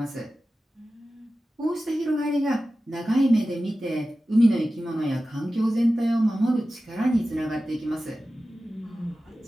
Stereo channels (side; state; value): both; normal; correlation 0.95